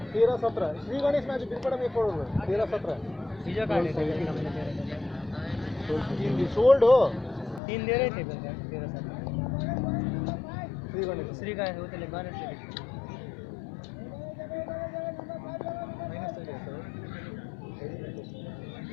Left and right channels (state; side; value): drops out; right; at 7.6 s